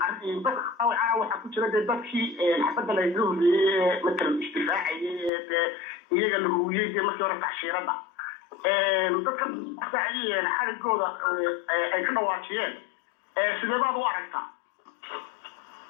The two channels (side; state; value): right; drops out; at 5.3 s